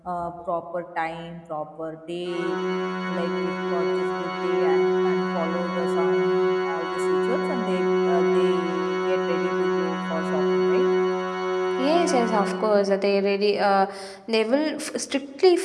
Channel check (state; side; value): identical; both; correlation 1.00